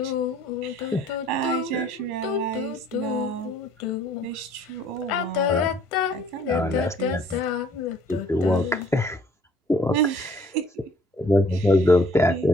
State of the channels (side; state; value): both; normal; correlation 0.57